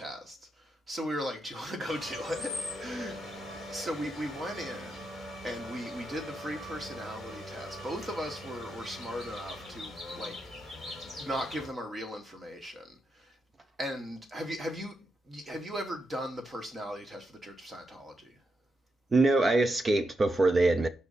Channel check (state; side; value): normal; both; correlation 0.85